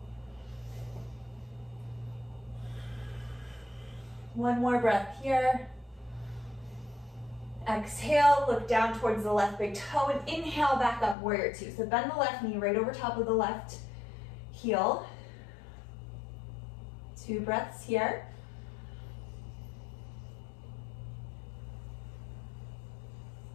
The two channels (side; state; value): right; drops out; at 11.2 s